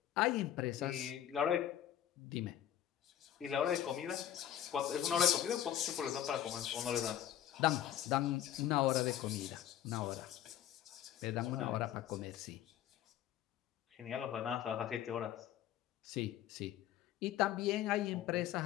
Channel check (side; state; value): right; quieter; 11.4 dB